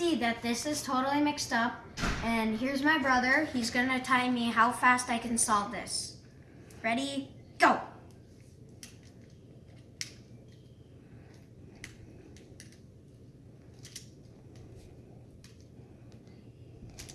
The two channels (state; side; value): identical; both; correlation 1.00